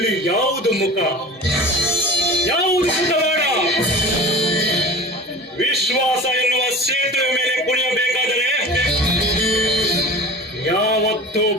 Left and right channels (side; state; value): both; normal; correlation 0.37